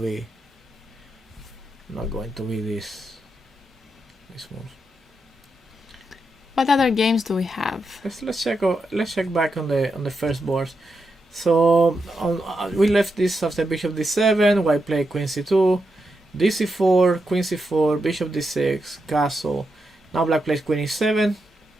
this move. What other games do we have? Let's check back on the first board. So we left this after bishop d7. White played queen c2, d4, queen c4, bishop d6, castle. Now black plays queen e7,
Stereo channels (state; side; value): normal; both; correlation 0.85